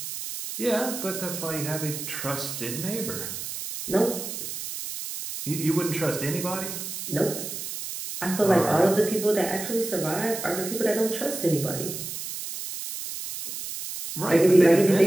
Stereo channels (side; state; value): right; noise; hiss, 7 dB below the sound